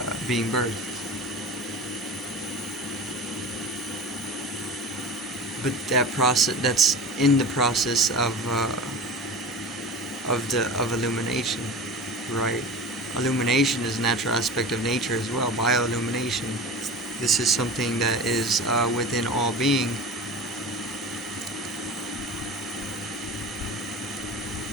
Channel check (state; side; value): normal; both; correlation 0.33